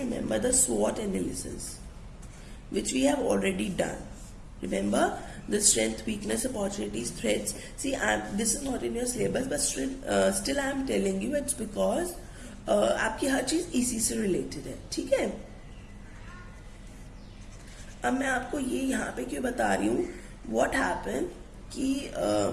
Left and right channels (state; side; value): identical; both; correlation 1.00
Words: the SWOT analysis, which we have already done. Remember the strength, weakness, opportunities, threats. See, this is not in your syllabus, but still I am telling you. It's because आपकी हर चीज इसी से related है. ठीक है. अब मैं आपको ये यहाँ पे क्यों बता रही हूँ. What happened कि